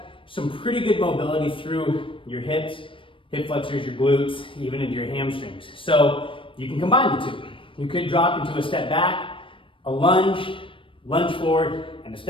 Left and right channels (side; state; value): right; late; 0.25 ms